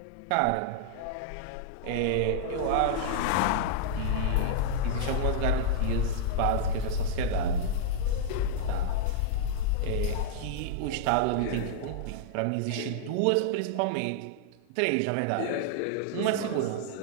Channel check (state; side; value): different; both; correlation -0.01